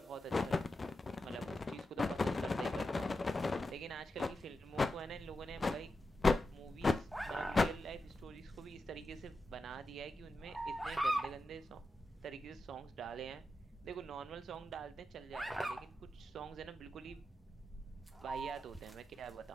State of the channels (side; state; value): both; normal; correlation 0.89